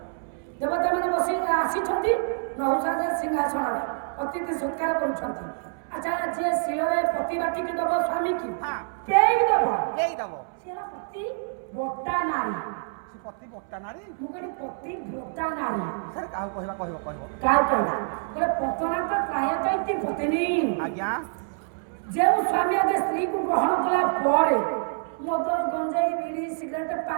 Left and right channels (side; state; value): left; silent; 61 dB below the other